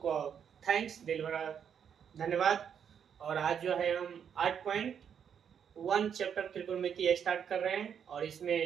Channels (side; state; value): left; quieter; 7.9 dB